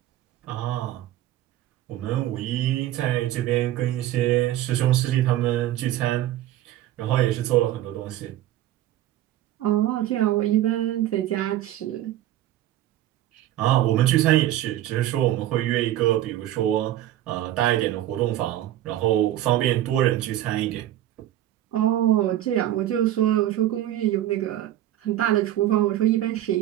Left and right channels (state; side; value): quieter; left; 13.4 dB